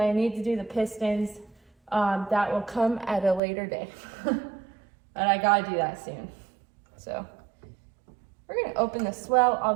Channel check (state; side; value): drops out; left; at 3.4 s